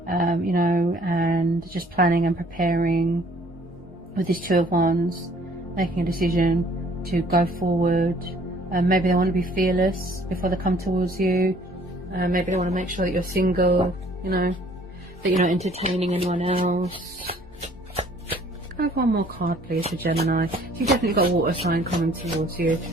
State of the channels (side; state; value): both; normal; correlation 0.57